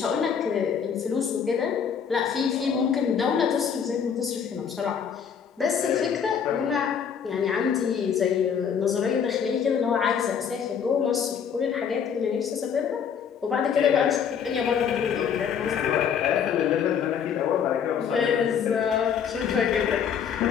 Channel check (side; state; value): right; quieter; 7.5 dB